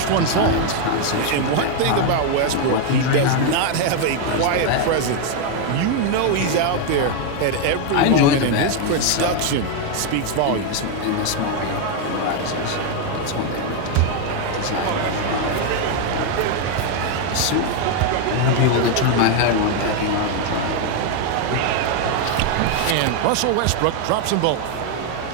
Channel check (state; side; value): different; both; correlation 0.01